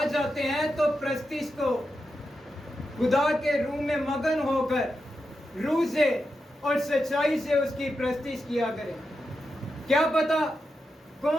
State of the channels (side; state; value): both; normal; correlation 0.88